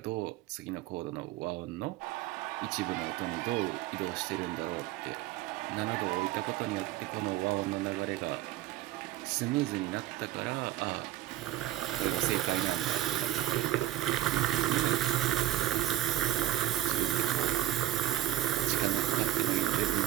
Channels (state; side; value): quieter; left; 13.8 dB